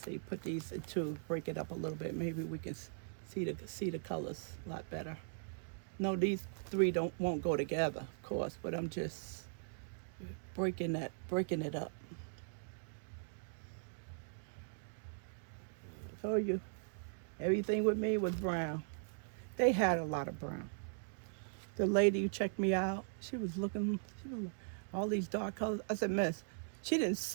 Put these into, break it up a little bit. Maybe we can see the colors a lot better. No, these three won't go together, of course, but I'm just breaking it up. Told you, everything with me was brown. They had a lot of brown. The lady who checked me out, she was looking, all these dark colors. I said, Miss, she didn't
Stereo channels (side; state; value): left; silent; digital silence